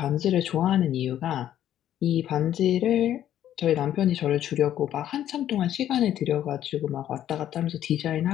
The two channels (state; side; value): quieter; right; 11.4 dB